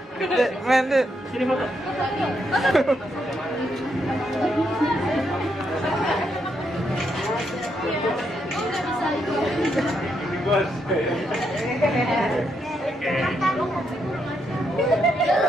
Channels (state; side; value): normal; both; correlation 0.79